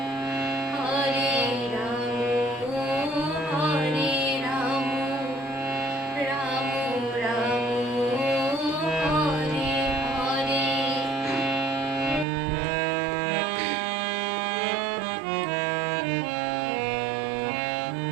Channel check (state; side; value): drops out; left; at 12.2 s